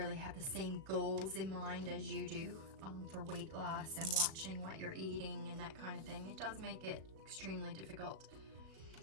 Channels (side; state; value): left; late; 37 ms